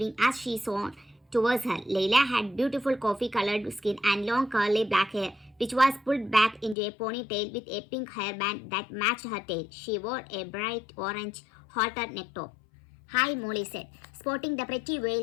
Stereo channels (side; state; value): right; drops out; at 6.8 s